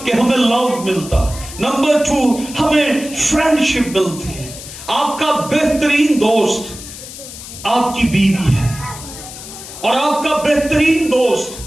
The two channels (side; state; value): left; noise; hiss, 13 dB below the sound